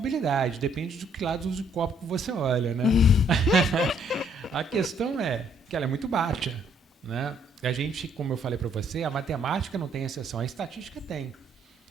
Depende do que lado do copo que você olha, né? A questão é que ela é muito baixa, né? A gente, como eu falei para você, a matemática não tem exceção, a estatística tem.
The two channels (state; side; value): normal; both; correlation 0.66